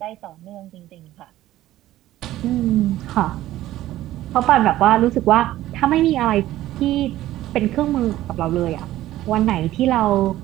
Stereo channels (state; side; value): quieter; left; 14.7 dB